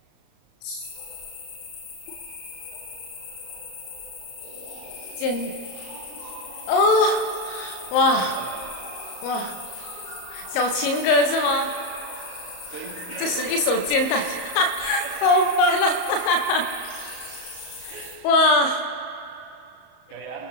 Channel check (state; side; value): late; right; 36 ms